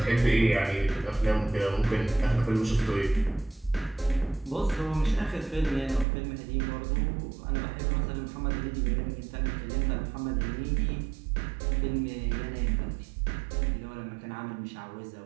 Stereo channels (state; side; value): drops out; left; at 6.1 s